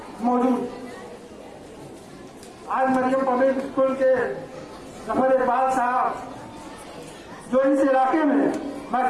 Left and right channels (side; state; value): both; identical; correlation 1.00